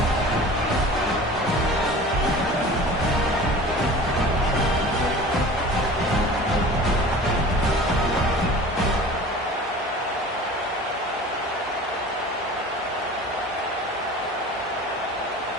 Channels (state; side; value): normal; both; correlation 0.40